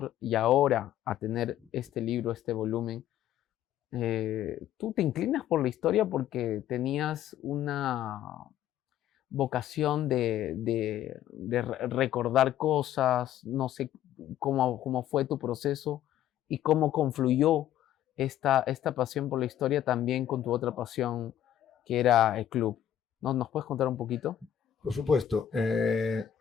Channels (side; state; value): right; quieter; 11.2 dB